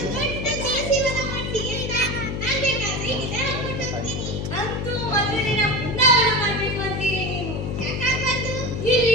ದೊಡ್ಡ ತುಳಸಿ ವನ ಮಾಡ್ತೀವಿ ಅಂತ. ನಾನು ಬೇಕಾದ್ರೆ ಇದನ್ನ ಕೊಟ್ಟು ಹೋಗ್ತೀನಿ. ಅಂತೂ ಮಧುರಿನ ಬೃಂದಾವನ ಮಾಡ್ಬೇಕು ಅಂತೀರಿ ನೀವು. ಯಾಕಾಗ್ಬಾರ್ದು?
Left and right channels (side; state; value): left; noise; hum, 4 dB below the sound